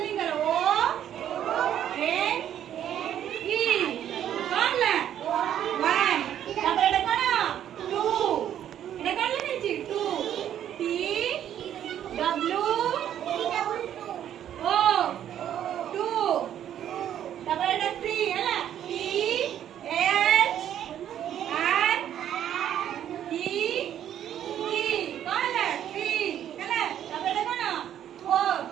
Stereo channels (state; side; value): quieter; left; 10.5 dB